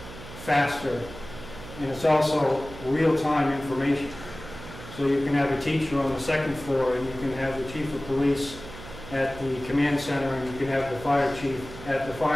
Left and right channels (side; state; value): right; noise; hum, 14 dB below the sound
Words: faster, and it's also real-time information. So you can have a teacher on the second floor, and you can have the chief of police at the command center, and you can have the fire chief at the